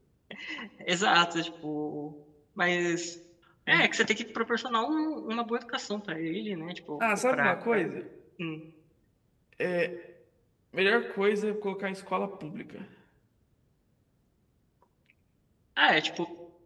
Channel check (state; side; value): identical; both; correlation 1.00